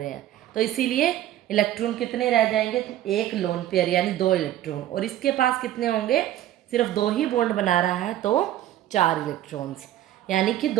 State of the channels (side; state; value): left; quieter; 12.9 dB